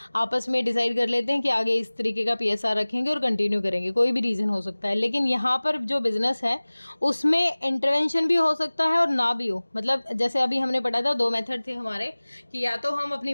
आपस में डिसाइड कर लेते हैं कि आगे इस तरीके का पीएसआर रखेंगे और कंटिन्यू करेंगे, कोई भी रीज़न हो सकता है। लेकिन यहाँ पर जो बिज़नेस है उसमें इंटरवेंशन भी हो सकता है और ना भी हो। मतलब जैसे अभी हमने पढ़ा था, दो मेथड थे हमारे कि या तो हम अपनी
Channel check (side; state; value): both; inverted; correlation -1.00